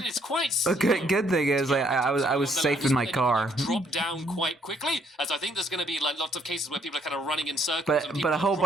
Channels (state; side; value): normal; both; correlation 0.68